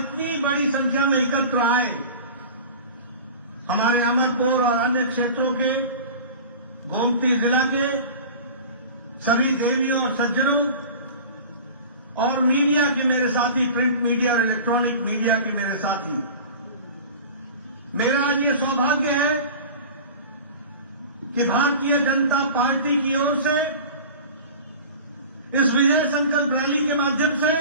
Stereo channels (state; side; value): inverted; both; correlation -0.37